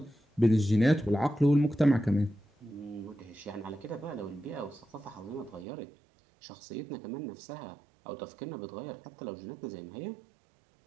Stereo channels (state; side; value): drops out; left; at 5.7 s